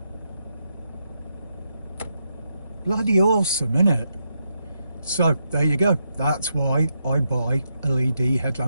Bloody awesome, innit? So there you go. That's why I buy LED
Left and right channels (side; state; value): both; inverted; correlation -0.82